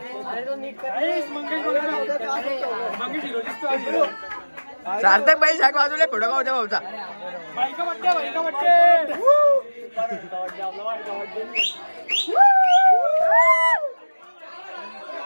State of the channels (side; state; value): both; inverted; correlation -1.00